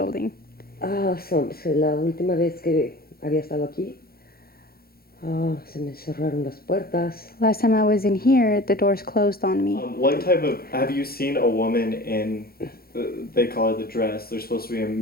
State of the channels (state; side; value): late; right; 0.44 ms